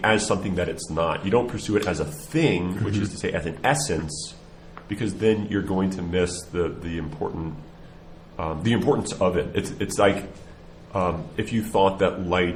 as something that it's not. You don't pursue it as a thing, which is to say as an essence, because then you're going to miss the importance of it. It's like if you thought that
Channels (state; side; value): identical; both; correlation 1.00